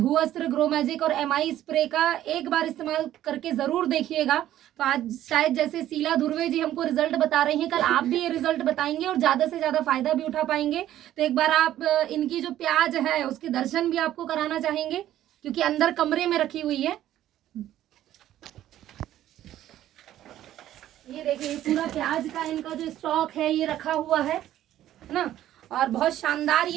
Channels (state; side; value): quieter; left; 12.7 dB